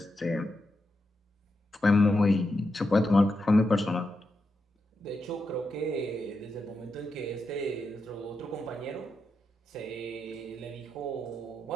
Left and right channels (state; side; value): normal; both; correlation 0.86